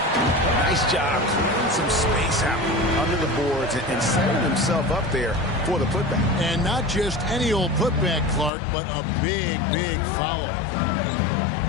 Nice job clearing some space out under the boards and setting himself up there for the putback. And not just any old putback, Clark, but a big, big foul.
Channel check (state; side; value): drops out; right; at 8.5 s